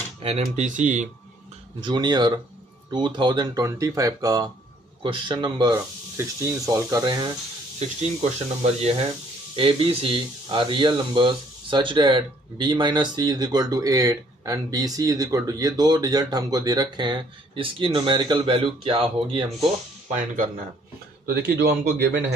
NMTC जूनियर 2025 का क्वेश्चन नंबर 16 सॉल्व कर रहे हैं। 16 क्वेश्चन नंबर ये है, A B C are real numbers such that b minus C is equal to 8 and B C is equal to, ये दो रिजल्ट हमको दे रखे हैं, इसकी न्यूमेरिकल वैल्यू क्या होगी हमको फाइंड करना है। तो देखिए, जो हमको गिवन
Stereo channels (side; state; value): both; normal; correlation 0.63